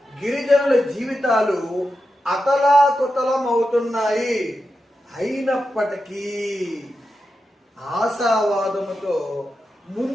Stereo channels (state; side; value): normal; both; correlation 0.89